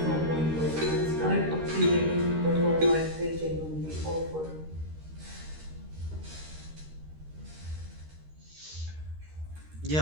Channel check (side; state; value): left; late; 13 ms